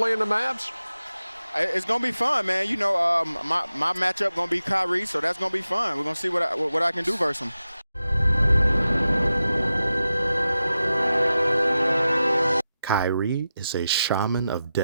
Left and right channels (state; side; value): inverted; both; correlation -0.92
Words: the Mavs? It's gonna be fun, man. You know, my matchup gonna be Kyrie, so that's gonna be fun. We're gonna see what I can do versus him. Kyrie is a shaman of